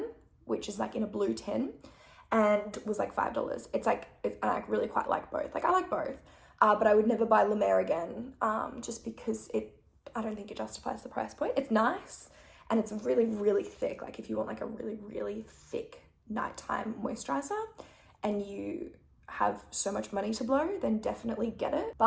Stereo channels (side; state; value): both; identical; correlation 1.00